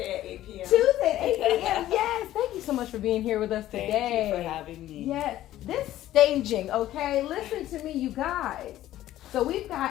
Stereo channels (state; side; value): quieter; right; 13.8 dB